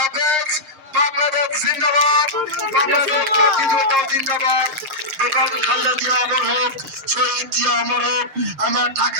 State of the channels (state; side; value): late; left; 6.5 ms